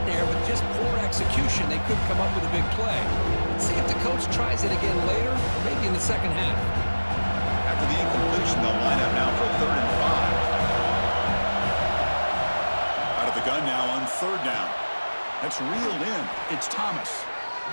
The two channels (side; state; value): both; inverted; correlation -1.00